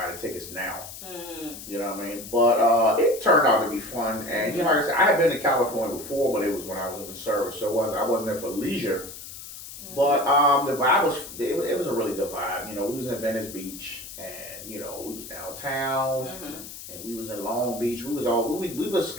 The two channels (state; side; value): noise; left; hiss, 13 dB below the sound